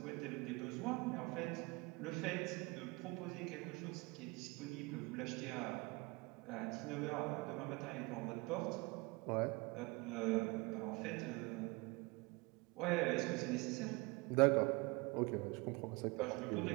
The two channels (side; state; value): left; quieter; 26.2 dB